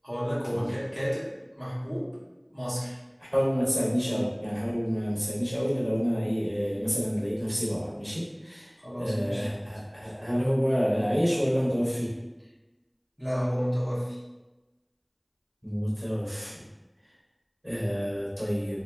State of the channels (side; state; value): both; identical; correlation 1.00